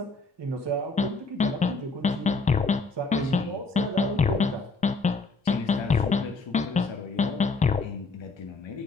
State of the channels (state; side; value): quieter; right; 3.8 dB